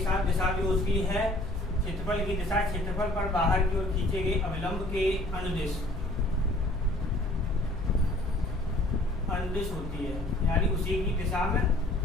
साथ दिशा भी होती है। क्षेत्रफल की दिशा क्षेत्रफल पर बाहर की ओर खींचे गए अविलंब के अनुदिश होती है, यानी उसी की दिशा में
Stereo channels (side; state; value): left; noise; hum, 9 dB below the sound